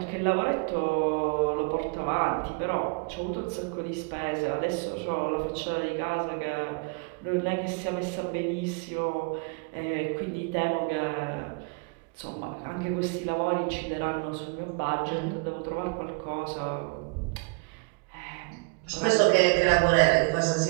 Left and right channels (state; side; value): quieter; left; 32.9 dB